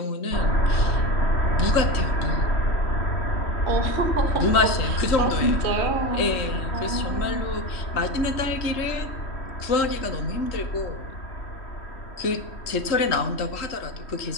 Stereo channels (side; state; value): right; late; 3.1 ms